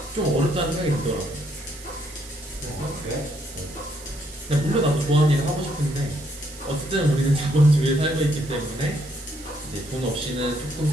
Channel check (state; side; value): noise; right; hiss, 17 dB below the sound